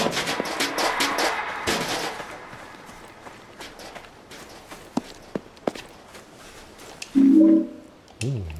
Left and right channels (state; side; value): identical; both; correlation 1.00